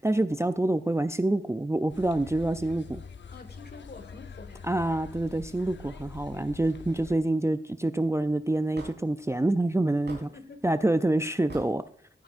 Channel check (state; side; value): normal; both; correlation 0.93